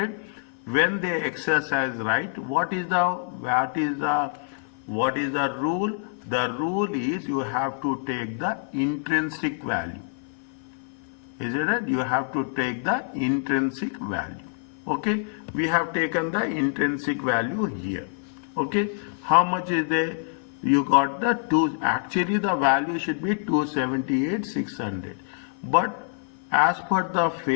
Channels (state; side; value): silent; right; 59 dB below the other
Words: When they exercise right, what is the rule? The rule is you have to take the intrinsic value. Is it right? You have to take the intrinsic value. Okay, we have taken the intrinsic value here. Okay, how much is there? You got the two. Actually, the value should be 278,600. But as per the